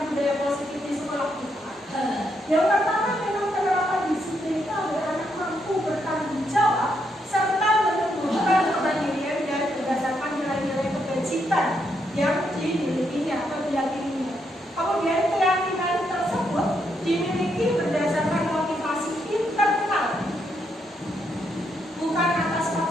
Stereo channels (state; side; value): normal; both; correlation 0.78